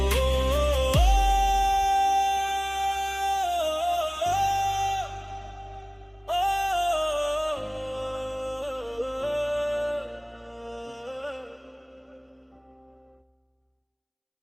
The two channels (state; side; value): identical; both; correlation 1.00